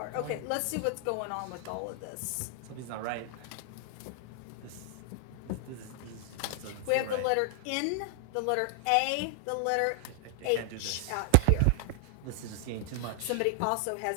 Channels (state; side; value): different; both; correlation 0.00